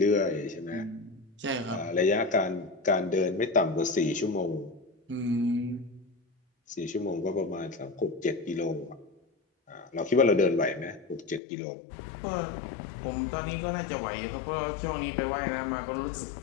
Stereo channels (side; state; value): right; drops out; at 11.4 s